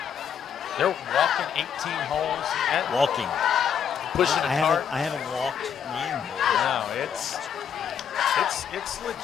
they're walking 18 holes. Walking. Pushing I hard. I haven't walked 9 holes. No, it's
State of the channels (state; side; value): quieter; right; 7.9 dB